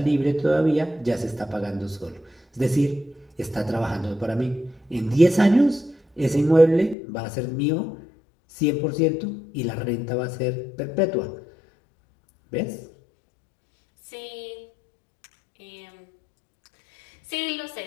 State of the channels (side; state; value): right; drops out; at 7.0 s